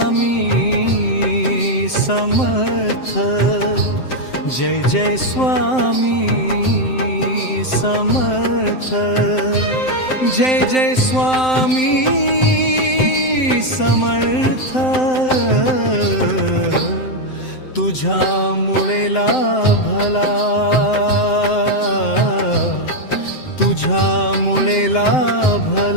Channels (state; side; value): late; right; 7.7 ms